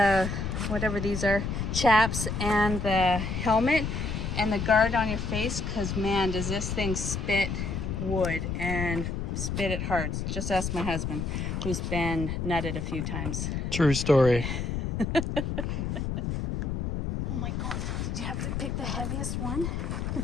whatever these are, chaps, and the helmet and the guard on your face, because man, does this thing spit wood and spit it hard. Just ask my husband, who's been nutted a few times. True story. Oh my god, did you have to pick the heaviest one?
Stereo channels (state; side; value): noise; left; rumble, 2 dB below the sound